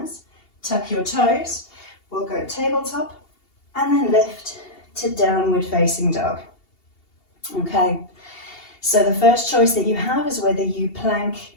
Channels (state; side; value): late; right; 2.8 ms